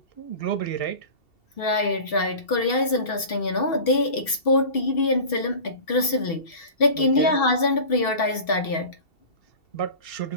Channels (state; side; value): late; right; 2.7 ms